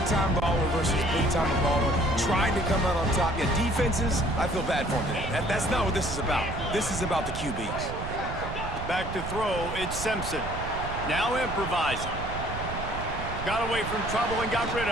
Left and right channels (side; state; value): right; noise; rumble, 7 dB below the sound